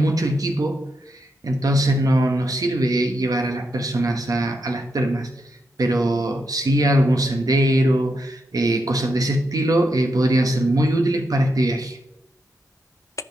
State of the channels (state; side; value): normal; both; correlation 0.83